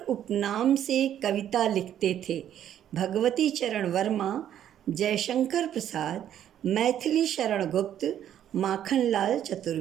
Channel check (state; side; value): quieter; left; 10.6 dB